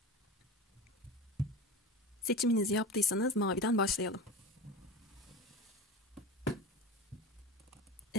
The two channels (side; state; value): both; normal; correlation 0.30